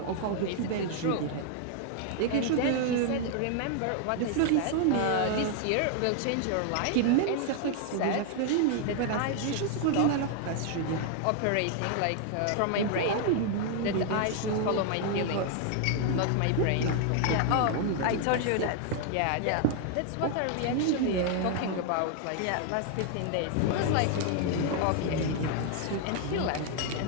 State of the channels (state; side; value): different; both; correlation 0.00